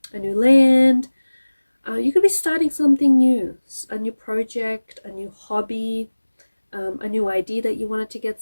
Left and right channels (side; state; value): both; inverted; correlation -1.00